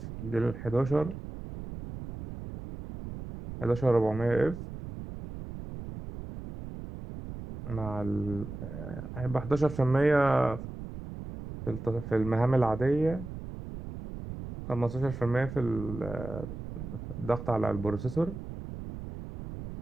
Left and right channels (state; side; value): noise; right; rumble, 10 dB below the sound